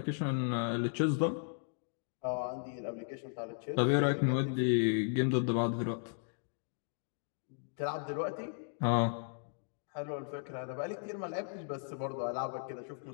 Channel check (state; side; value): silent; right; digital silence